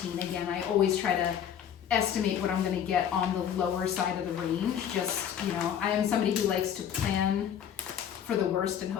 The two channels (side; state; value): right; quieter; 9.1 dB